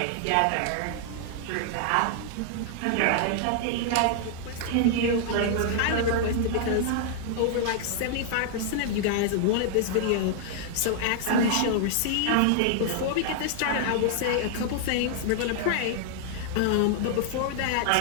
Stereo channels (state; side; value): different; both; correlation -0.01